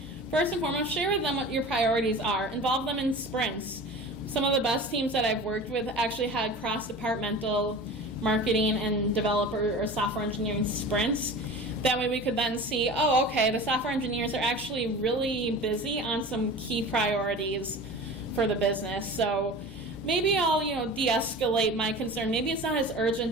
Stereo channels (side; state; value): both; normal; correlation 0.36